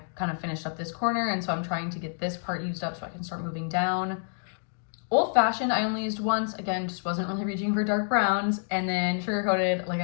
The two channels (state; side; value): silent; right; digital silence